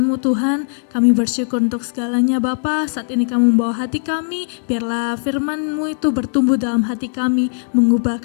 Tuhan. Kami bersyukur untuk segalanya Bapa. Saat ini Kamu membawa hati kami, biarlah firman-Mu itu bertumbuh dalam hati kami,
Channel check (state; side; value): silent; right; digital silence